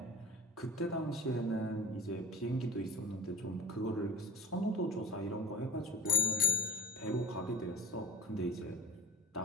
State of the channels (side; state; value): both; normal; correlation 0.40